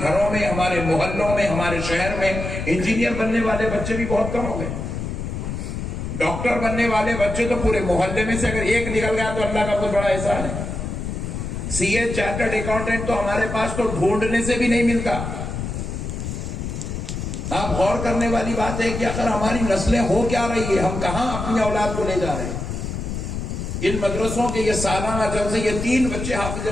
گھروں میں، ہمارے محلوں میں، ہمارے شہر میں انجینئر بننے والے بچے بھی بہت کم ہو گئے۔ ڈاکٹر بننے والے بچے تو پورے محلے میں سے اگر ایک نکل گیا تو اللہ کا بہت بڑا احسان ہے۔ سی اے، چارٹرڈ اکاؤنٹنٹ تو ہمارے پاس تو ڈھونڈنے سے بھی نہیں ملتا۔ آپ غور کرنے والی بات ہے کہ اگر ہماری نسلیں ہو کیا رہی ہے، ہم کہاں اپنی اولاد کو لے جا رہے ہیں۔ ان مدرسوں کے یہ سالانہ جلسے، یہ 3 بچے حافظ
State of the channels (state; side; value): noise; left; rumble, 5 dB below the sound